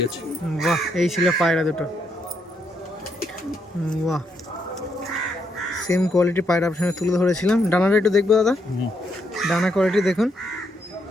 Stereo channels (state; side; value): normal; both; correlation 0.77